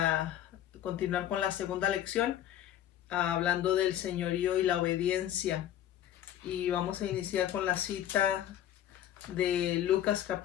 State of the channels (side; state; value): right; quieter; 11.6 dB